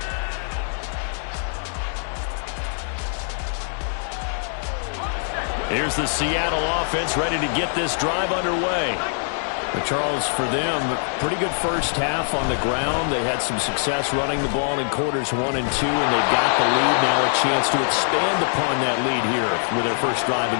Here's the Seattle offense ready to get this drive underway. Charles, for them, pretty good first half on the ground. They had some success running the ball in quarters 1 and 2, and they've got the lead now, a chance to expand upon that lead here with their first drive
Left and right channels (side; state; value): right; silent; 61 dB below the other